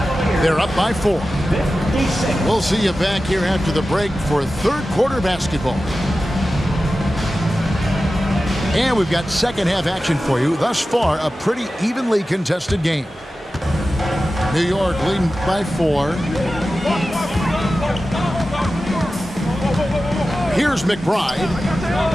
They're up by 4. We'll see you back here after the break for third quarter basketball. And we've got second half action for you. Thus far, a pretty evenly contested game. New York leading by 4. Here's McBride.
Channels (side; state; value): both; normal; correlation 0.94